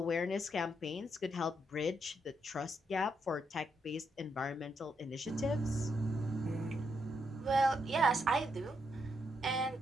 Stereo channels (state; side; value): normal; both; correlation 0.79